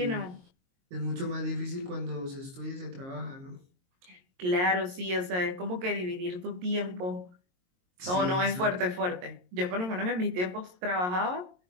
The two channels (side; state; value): left; late; 22 ms